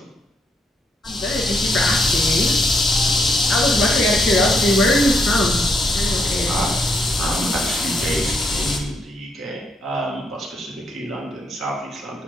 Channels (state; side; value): normal; both; correlation 0.75